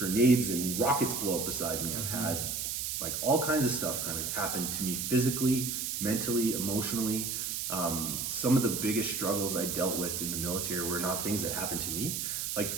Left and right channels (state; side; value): noise; right; hiss, 2 dB below the sound